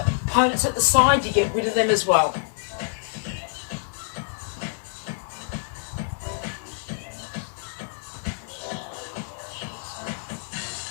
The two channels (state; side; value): silent; right; 61 dB below the other